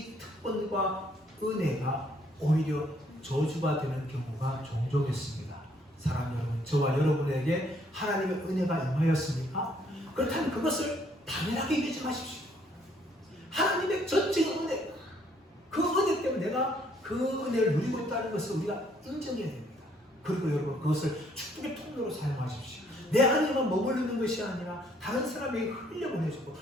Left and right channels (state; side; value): normal; both; correlation 0.66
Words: 특권과 은혜가 오히려 저주가 되는 경우가 종종 있습니다. 사랑 여러분, 저와 여러분에게 하나님의 은혜가 임하였습니까? 그렇다면 그것을 당연하게 여기지 마십시오. 하나님의 전적인 은혜, 그 은혜 때문에 내가 그 은혜를 누리고 있다는 것을 우리가 인정해야 됩니다. 그리고 여러분, 그것을 축복의 통로로 사용하십시오. 내 안에만 머무르는 것이 아니라 다른 사람에게 흘려보내주고